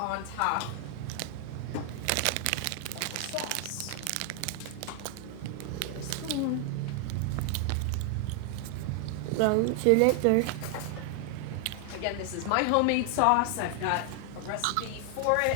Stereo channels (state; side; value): different; both; correlation 0.00